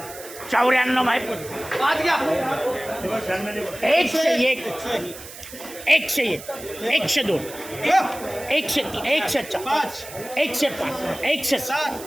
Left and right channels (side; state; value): right; noise; hiss, 15 dB below the sound